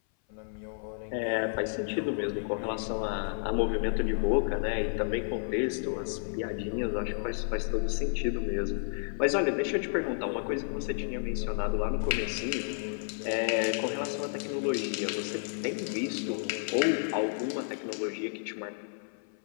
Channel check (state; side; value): silent; right; 56 dB below the other